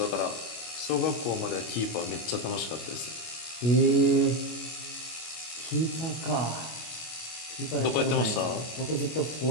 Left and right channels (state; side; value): late; right; 25 ms